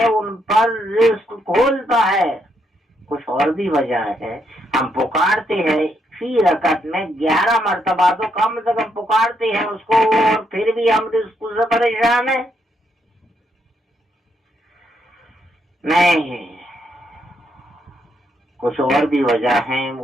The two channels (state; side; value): normal; both; correlation 0.77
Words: ان پر رزق کھولتا ہے۔ کچھ اور بھی وجہ ہے، ہم پکارتے ہیں فی رکعت میں 11 مرتبہ تو کم سے کم پکارتے ہیں اس کو، اور پھر بھی ہم رزق سے پریشان ہیں۔ نہیں، کچھ اور بھی وجہ ہیں،